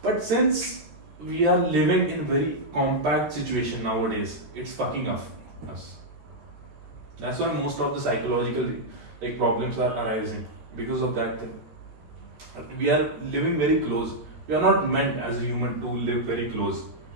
since we are living in very compact situation nowadays, it's fucking up us. That's why most of the psychological problems are arising because of that thing. We are living very close. We are not meant as a human to live very close.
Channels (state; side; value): late; left; 13 ms